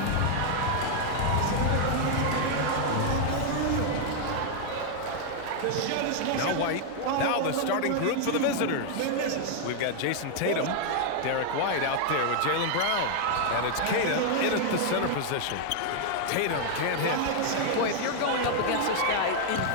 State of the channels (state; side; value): different; both; correlation 0.00